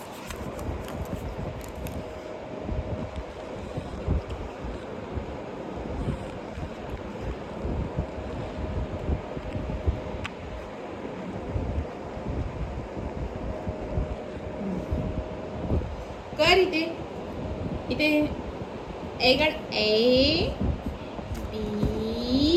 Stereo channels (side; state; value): both; identical; correlation 1.00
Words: कर इथे इथे ए काढ. A